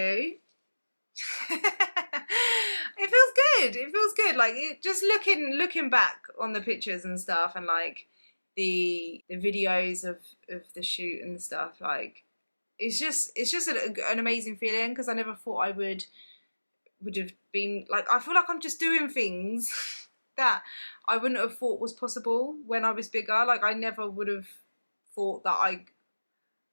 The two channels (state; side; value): inverted; both; correlation -1.00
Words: It feels good. It feels good. Like just looking back on the pictures and stuff, and like the videos of the shoot and stuff. Like it's just an amazing feeling, because I never thought I would have been like, I feel like I'm just doing things that I wouldn't have thought was possible when I was bigger. Like I never would have thought that